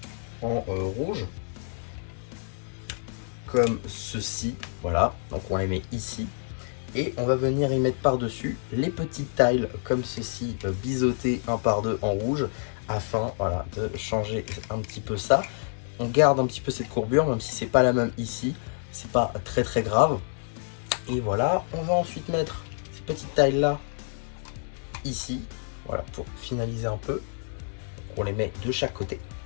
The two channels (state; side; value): silent; right; 59 dB below the other